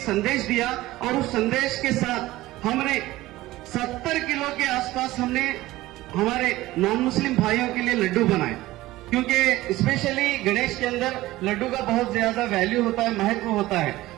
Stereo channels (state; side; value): quieter; left; 17.3 dB